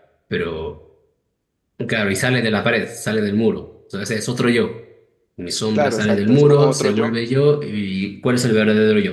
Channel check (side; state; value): both; identical; correlation 1.00